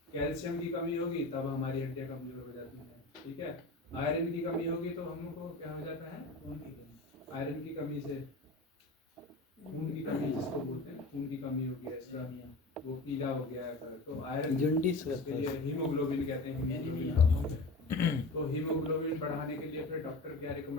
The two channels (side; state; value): right; quieter; 3.0 dB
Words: कैल्शियम की कमी होगी तब हमारी हड्डियाँ कमज़ोर हो जाती हैं, ठीक है। आयरन की कमी होगी तो हमको क्या हो जाता है, आयरन की कमी से खून की कमी जिसको बोलते हैं, खून की कमी हो गया इसका, वो पीला हो गया है, तो आयरन इसके लिए हीमोग्लोबिन कहते हैं, हीमोग्लोबिन कम हो गया। तो हीमोग्लोबिन बढ़ाने के लिए फिर डॉक्टर क्या